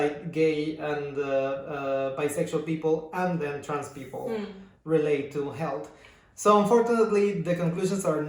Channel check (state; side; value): identical; both; correlation 1.00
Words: gay and bisexual people, and then trans people relate to health. So unfortunately, the conclusions are